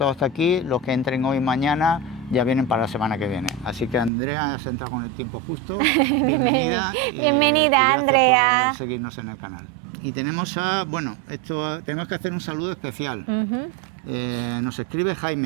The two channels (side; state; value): left; drops out; at 4.1 s